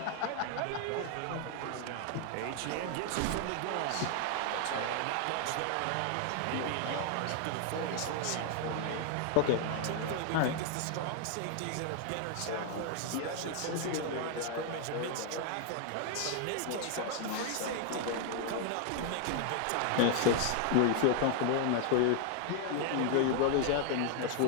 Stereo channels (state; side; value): different; both; correlation 0.00